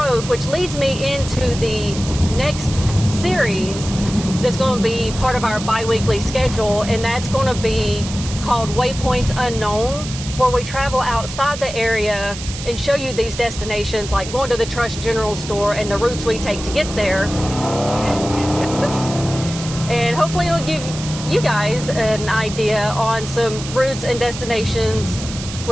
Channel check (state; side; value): noise; right; hiss, 10 dB below the sound